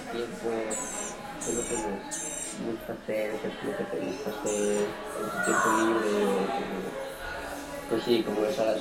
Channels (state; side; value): identical; both; correlation 1.00